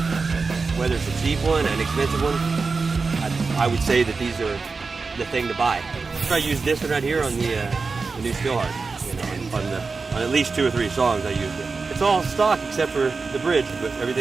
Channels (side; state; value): left; quieter; 4.4 dB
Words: whether it's a cheap one, an expensive one, I would say that these are the thing to buy. I use this one right here on the new Steelheart. You know, on at least 2 or 3 songs I used it. It's all stock except for the bridge, but